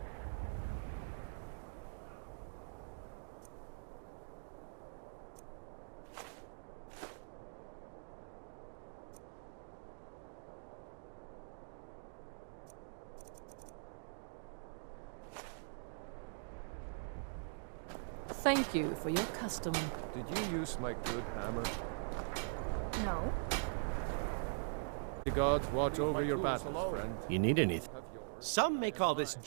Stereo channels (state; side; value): silent; left; digital silence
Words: Thank you for your custom. Did you use my good hammer? No. The gods watch over your battles, friend. You need anything? Some may call this